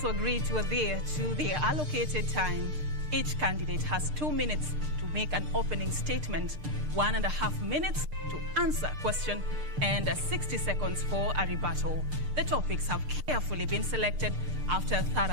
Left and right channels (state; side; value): late; left; 6.6 ms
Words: agreed to adhere to their allocated time. Each candidate has 2 minutes to make an opening statement, 1.5 minutes to answer a question, and 60 seconds for a rebuttal. The topics have carefully been selected after a